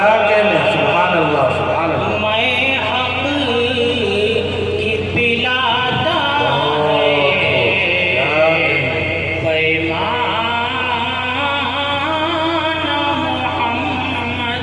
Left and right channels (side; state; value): both; identical; correlation 1.00